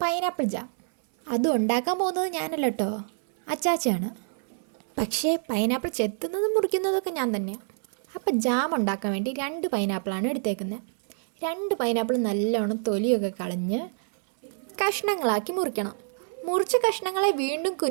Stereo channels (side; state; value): left; silent; 60 dB below the other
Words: പൈനാപ്പിൾ ജാം. അതും ഉണ്ടാക്കാൻ പോകുന്നത് ഞാനല്ല കേട്ടോ, അച്ചാച്ചയാണ്. പക്ഷേ പൈനാപ്പിൾ ചെത്തുന്നതും മുറിക്കുന്നതൊക്കെ ഞാൻ തന്നെയാണ്. അപ്പോൾ ജാം ഉണ്ടാക്കാൻ വേണ്ടി 2 പൈനാപ്പിളാണ് എടുത്തേക്കുന്നത്. 2 പൈനാപ്പിൾ നല്ലോണം തൊലിയൊക്കെ കളഞ്ഞ് കഷ്ണങ്ങളാക്കി മുറിക്കണം. മുറിച്ച കഷ്ണങ്ങളെ വീണ്ടും